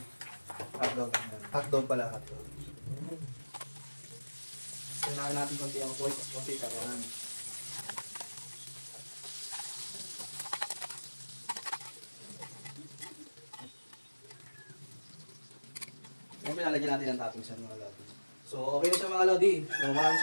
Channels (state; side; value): inverted; both; correlation -1.00